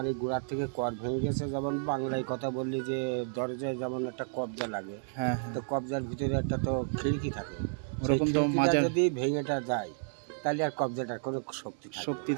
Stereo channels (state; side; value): silent; left; 57 dB below the other